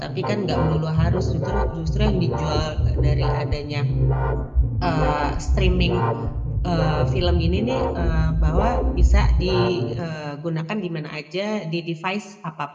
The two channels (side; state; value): both; identical; correlation 1.00